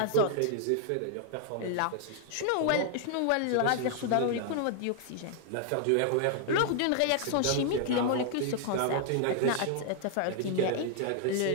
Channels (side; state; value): both; different; correlation 0.00